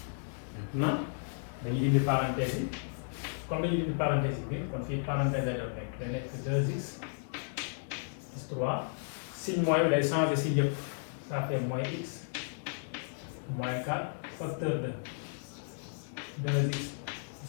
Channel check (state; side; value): silent; right; digital silence